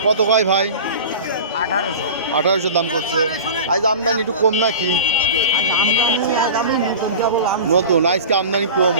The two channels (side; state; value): both; inverted; correlation -0.34